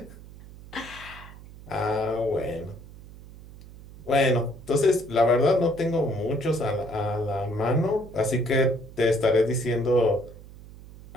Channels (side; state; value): right; noise; hum, 18 dB below the sound